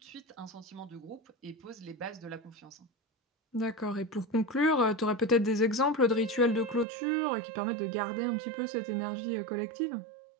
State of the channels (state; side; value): drops out; left; at 6.9 s